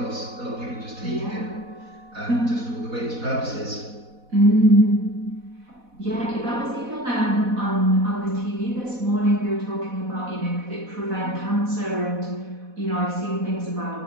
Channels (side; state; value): left; late; 4.1 ms